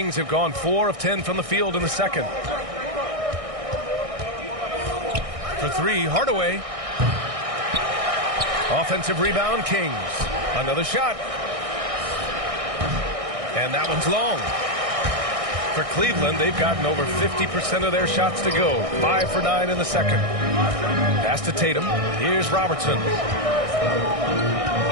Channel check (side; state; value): left; late; 1.6 ms